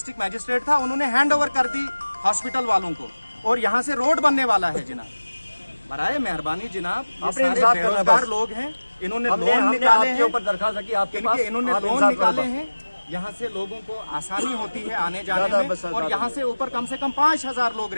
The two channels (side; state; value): both; inverted; correlation -1.00